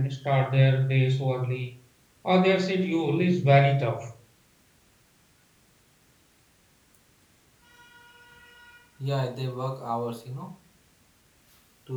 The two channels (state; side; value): identical; both; correlation 1.00